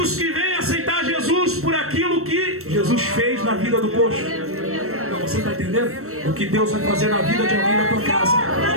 que vêm aceitar Jesus por aquilo que Jesus fez na vida do coxo? Então, você está entendendo? O que Deus vai fazer na vida de alguém na tua casa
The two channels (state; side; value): late; left; 0.63 ms